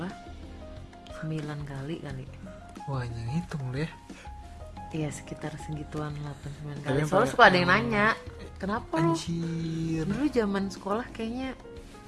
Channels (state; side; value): identical; both; correlation 1.00